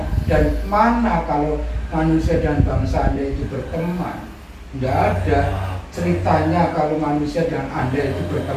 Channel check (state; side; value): identical; both; correlation 1.00